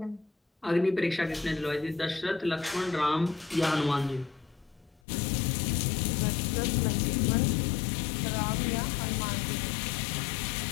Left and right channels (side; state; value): right; drops out; at 5.0 s